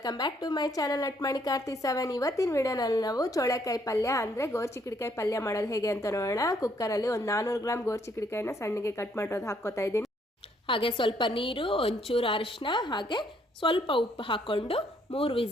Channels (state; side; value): normal; both; correlation 0.69